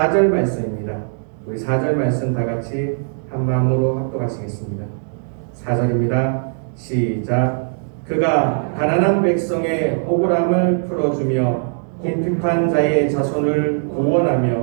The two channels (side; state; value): left; silent; digital silence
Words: 말씀입니다. 우리 4절 말씀 다 같이 한 마음으로 합독하시겠습니다. 4절입니다. 시작. 그가 가난한 백성의 억울함을 풀어주며 궁핍한 자의 자손을